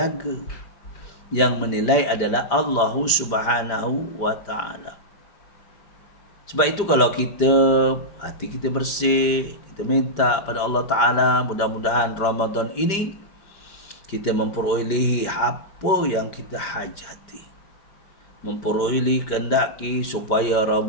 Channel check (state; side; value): late; right; 5.0 ms